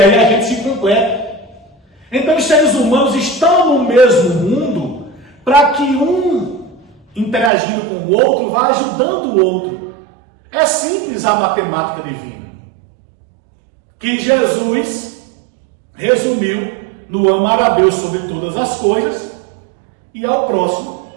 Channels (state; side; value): drops out; left; at 7.5 s